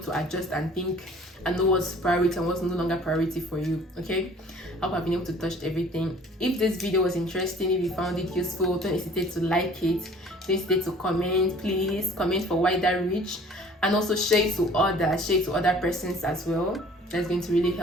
to adjust and think and know what's priority and what's no longer priority for you. Okay, I hope I've been able to touch everything. If this video was interesting, if you found it useful, don't hesitate to like it, don't hesitate to comment. Please comment for wider reach, and also share it to other persons as well. That's going to really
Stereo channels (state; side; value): normal; both; correlation 0.52